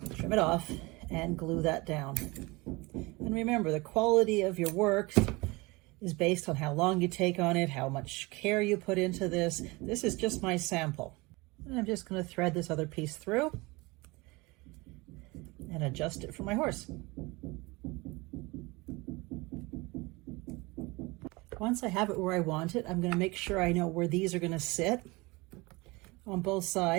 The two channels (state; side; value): quieter; left; 24.1 dB